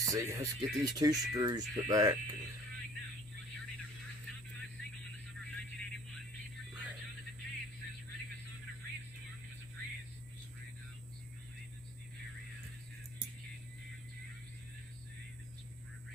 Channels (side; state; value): both; normal; correlation 0.52